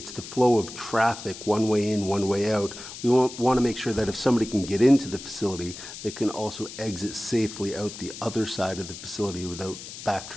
the flow of traffic, one way in, one way out. We want to make sure that if somebody can get into the facility, they can also exit safely out the other side of the facility without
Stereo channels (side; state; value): left; noise; hiss, 12 dB below the sound